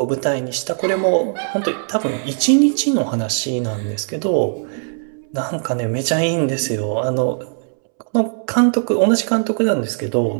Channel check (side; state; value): left; silent; 66 dB below the other